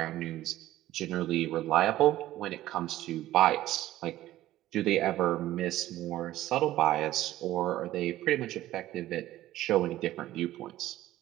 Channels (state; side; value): quieter; left; 14.8 dB